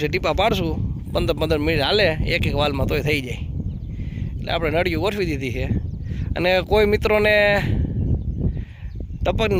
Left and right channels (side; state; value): both; identical; correlation 1.00